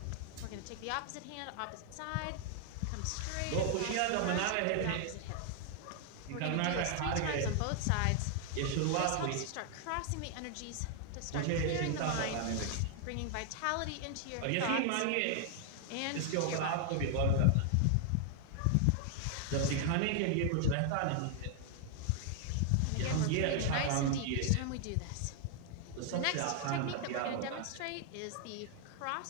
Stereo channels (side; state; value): both; different; correlation 0.00